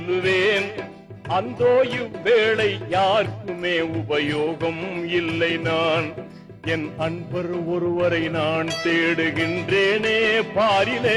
அந்தோ இவ்வேளை யாருக்குமே உபயோகம் இல்லை. நான் என் அன்பர் ஒருவரை நான் தேடுகின்றேனே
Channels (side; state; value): both; identical; correlation 1.00